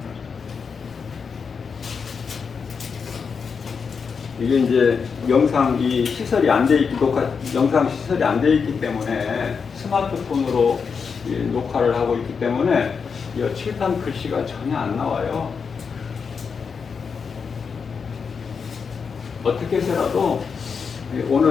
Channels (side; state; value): right; quieter; 5.8 dB